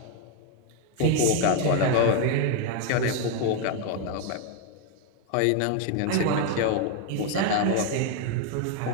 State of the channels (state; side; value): different; both; correlation 0.01